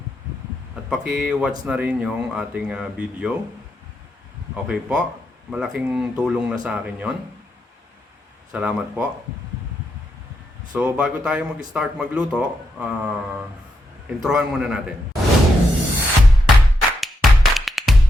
at paki-watch na rin yung ating video. Okay po, malaking tulong na sa akin yon. Salamat po. So bago tayo mag-start magluto, introhan muna natin.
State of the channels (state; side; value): normal; both; correlation 0.82